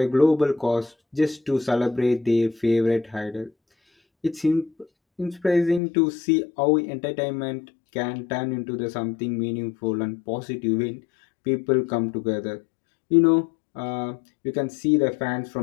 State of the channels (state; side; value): drops out; right; at 5.8 s